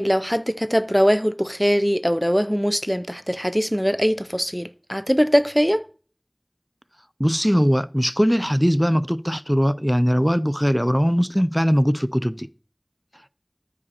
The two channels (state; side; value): identical; both; correlation 1.00